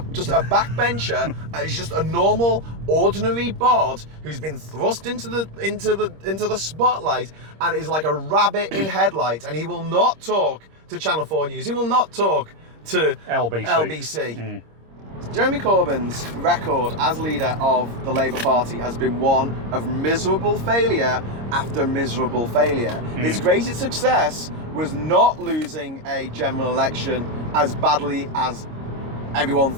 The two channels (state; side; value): late; left; 26 ms